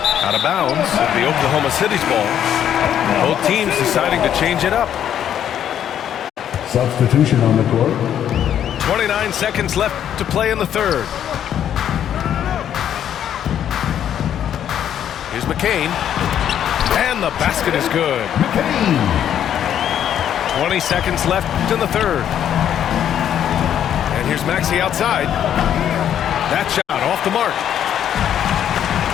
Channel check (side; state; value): right; quieter; 9.9 dB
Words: of bounds. It'll be Oklahoma City's ball. Both teams deciding to change it up. Substitution on the court. 29 seconds left to play in the third. Here's McCain. And the basket is good. McCain. 20 seconds left in the third. And here's Maxey outside. That shot off the mark.